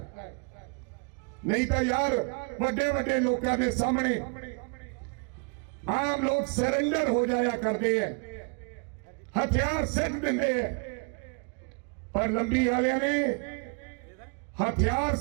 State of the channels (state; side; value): quieter; left; 36.4 dB